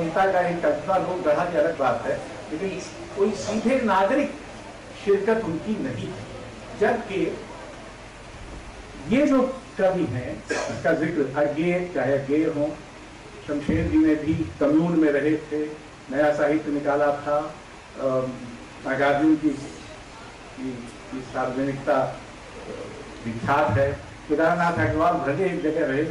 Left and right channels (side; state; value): both; identical; correlation 1.00